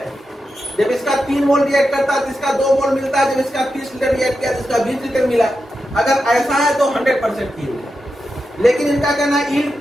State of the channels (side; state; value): both; normal; correlation 0.89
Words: जब इसका 3 मोल रिएक्ट करता है तो इसका 2 मोल मिलता है, जब इसका 30 लीटर रिएक्ट किया तो इसका 20 लीटर मिला। अगर ऐसा है तो 100% यील्ड है, लेकिन इनका कहना यील्ड